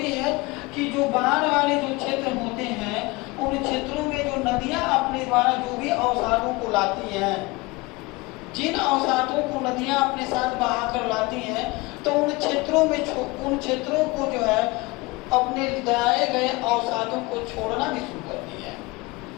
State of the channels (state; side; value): quieter; right; 23.5 dB